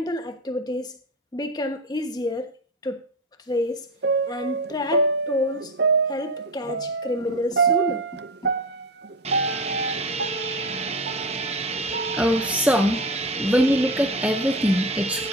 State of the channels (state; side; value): normal; both; correlation 0.24